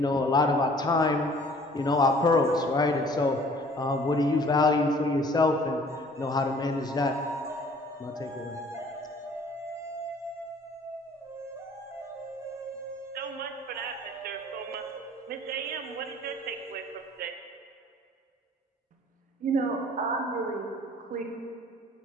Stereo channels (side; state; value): both; normal; correlation 0.53